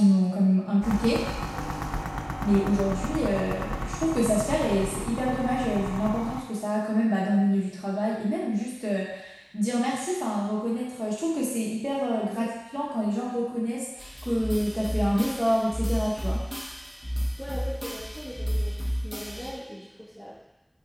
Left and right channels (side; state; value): both; identical; correlation 1.00